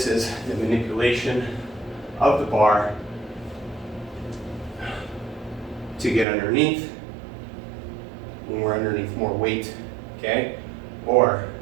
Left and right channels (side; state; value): left; drops out; at 6.2 s